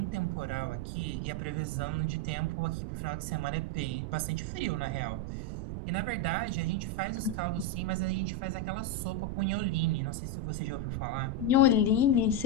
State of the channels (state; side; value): noise; right; rumble, 4 dB below the sound